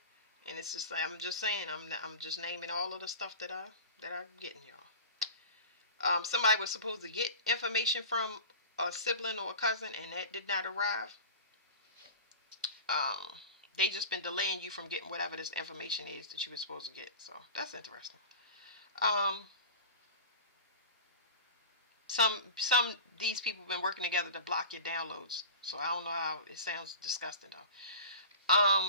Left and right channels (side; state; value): both; inverted; correlation -0.34